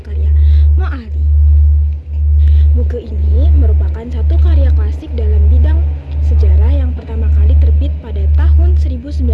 karya Moali. Buku ini merupakan satu karya klasik dalam bidang sejarah yang pertama kali terbit pada tahun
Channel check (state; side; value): identical; both; correlation 1.00